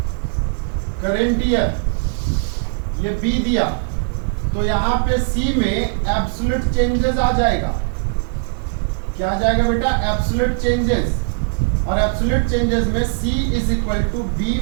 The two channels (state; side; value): silent; left; digital silence